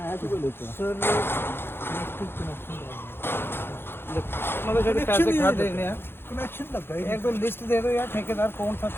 तो लेते सर, मतलब जो पैसे खा देने हैं कनेक्शन लगा है। एक तो लिस्ट दे दो यार, ठेकेदार कौन सा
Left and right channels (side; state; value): right; late; 0.11 ms